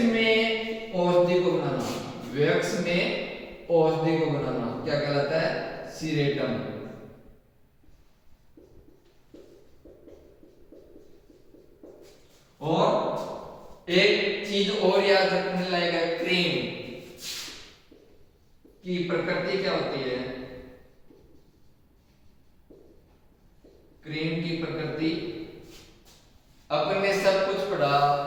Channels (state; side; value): identical; both; correlation 1.00